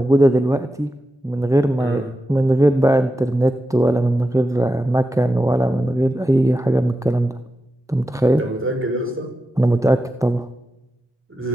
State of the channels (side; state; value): both; normal; correlation 0.90